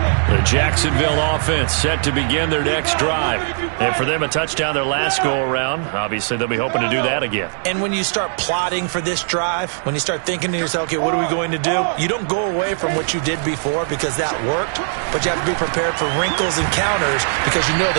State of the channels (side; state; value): left; silent; digital silence